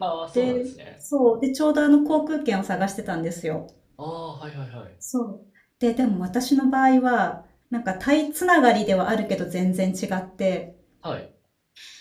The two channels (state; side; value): identical; both; correlation 1.00